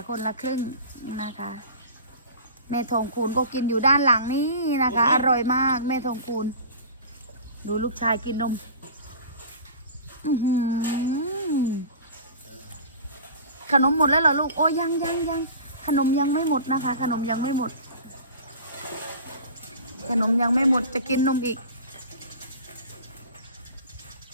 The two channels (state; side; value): inverted; both; correlation -0.39